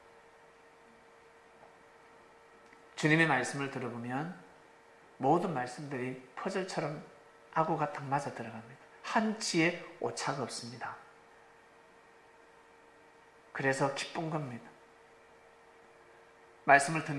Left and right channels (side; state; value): both; identical; correlation 1.00